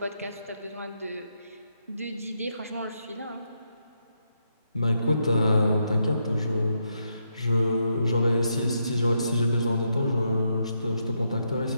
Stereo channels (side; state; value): both; inverted; correlation -0.80